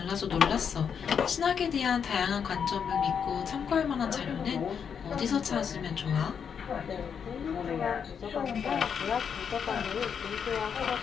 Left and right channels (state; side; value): quieter; right; 7.2 dB